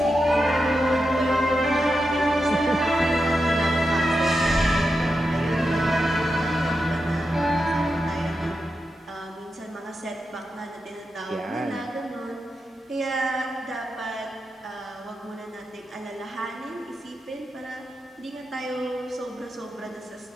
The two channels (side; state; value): both; normal; correlation 0.88